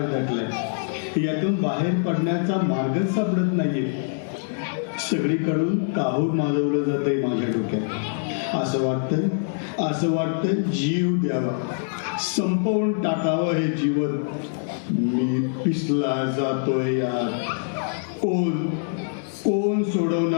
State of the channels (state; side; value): silent; right; 62 dB below the other